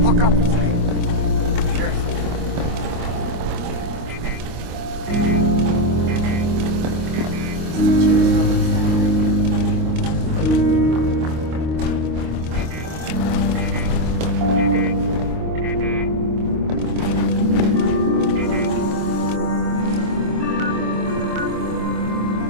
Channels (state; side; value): late; left; 25 ms